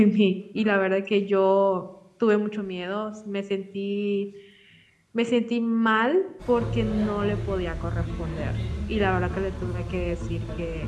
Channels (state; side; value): identical; both; correlation 1.00